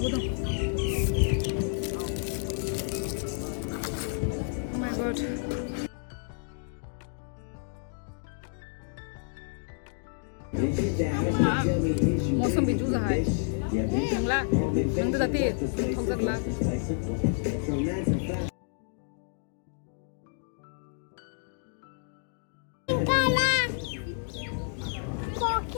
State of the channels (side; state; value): right; silent; digital silence